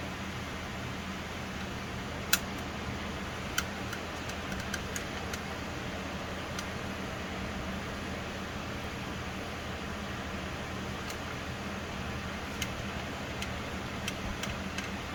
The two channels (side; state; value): both; identical; correlation 1.00